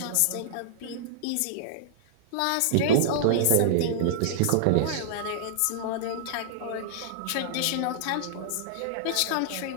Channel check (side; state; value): both; different; correlation -0.02